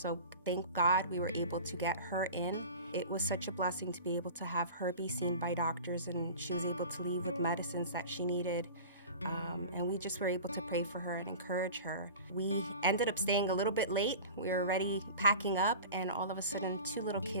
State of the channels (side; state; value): both; inverted; correlation -0.37